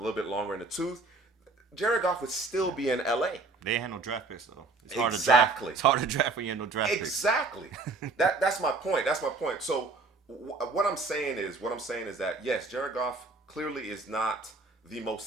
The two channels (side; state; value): left; quieter; 3.6 dB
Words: bit longer in the tooth, Jared Goff would still be in LA. They ain't had no draft picks though. Exactly. It's hard to draft when you have no draft picks. Exactly. That's my point. That's my point. So what I'm saying is that yes, Jared Goff clearly is not the